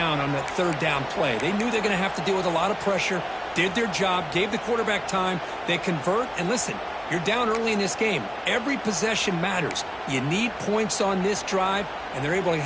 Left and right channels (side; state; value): both; identical; correlation 1.00